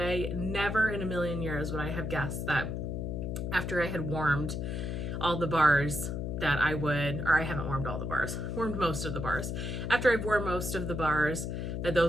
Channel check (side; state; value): left; noise; hum, 3 dB below the sound